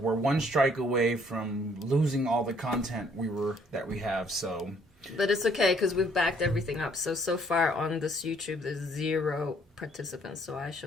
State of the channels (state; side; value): normal; both; correlation 0.64